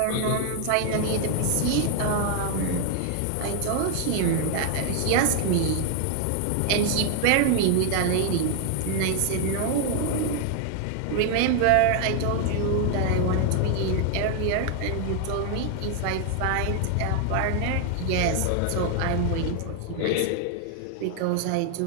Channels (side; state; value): both; different; correlation 0.00